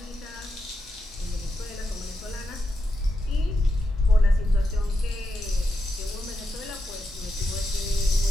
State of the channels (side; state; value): both; normal; correlation 0.86